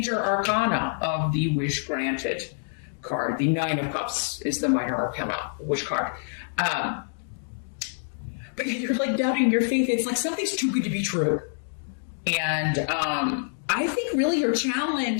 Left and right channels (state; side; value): silent; right; digital silence